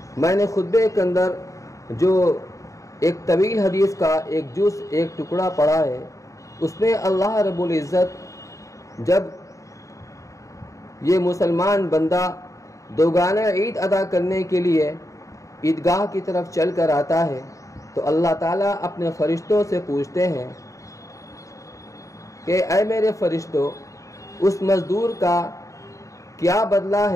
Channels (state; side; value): late; right; 0.16 ms